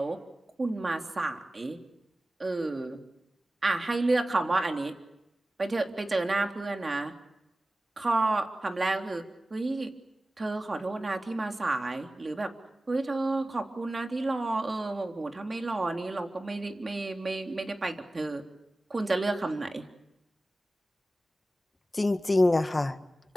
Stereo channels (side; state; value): both; normal; correlation 0.96